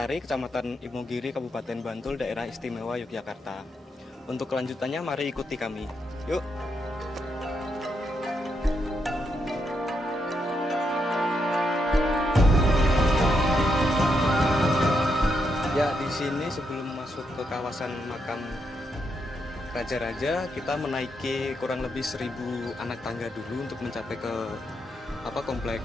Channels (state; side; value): normal; both; correlation 0.80